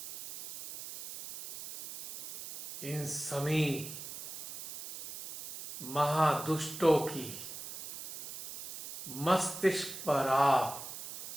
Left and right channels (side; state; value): right; noise; hiss, 10 dB below the sound